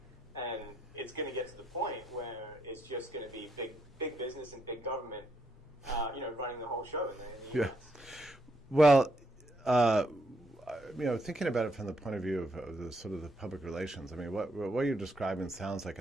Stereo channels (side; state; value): both; normal; correlation 0.76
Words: And it's going to get to the point where it's just going to be big business and big government, running the whole show. In the US. Well, thinking about it from the point of view of the sort of the public relations, I mean, what you're describing sounds like